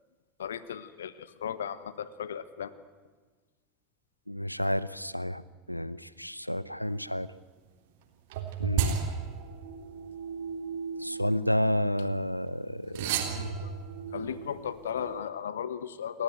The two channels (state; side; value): inverted; both; correlation -0.67